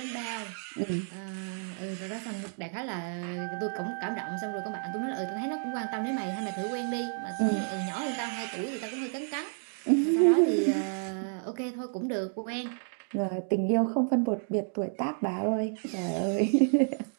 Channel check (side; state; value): left; silent; 57 dB below the other